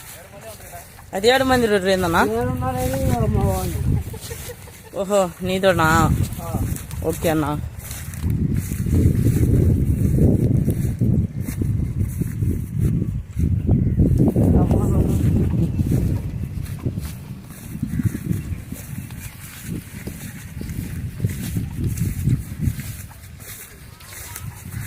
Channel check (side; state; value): both; identical; correlation 1.00